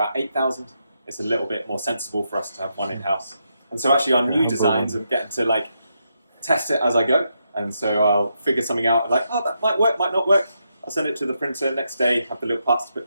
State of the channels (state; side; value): inverted; both; correlation -0.82